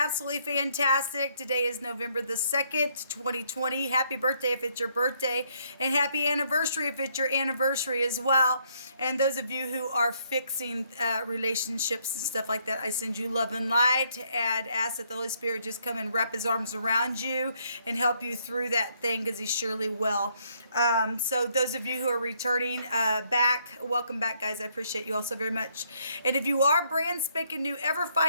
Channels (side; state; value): both; inverted; correlation -0.71